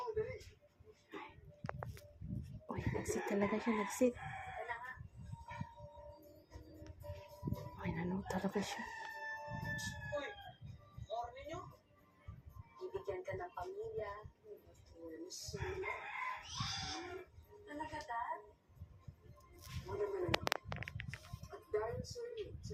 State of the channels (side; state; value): both; identical; correlation 1.00